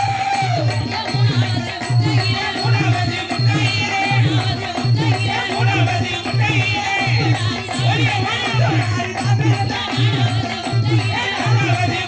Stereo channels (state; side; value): identical; both; correlation 1.00